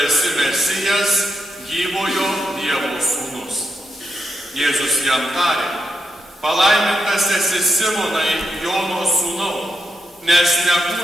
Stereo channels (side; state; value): both; normal; correlation 0.83